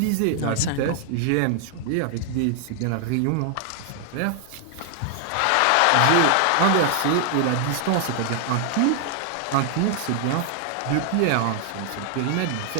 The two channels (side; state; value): both; different; correlation 0.00